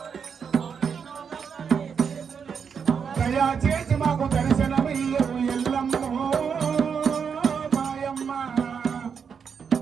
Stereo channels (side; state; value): left; quieter; 6.6 dB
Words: దయా చేసి మాకు దర్శనమయ్యో ఎల్లమ్మో మాయమ్మ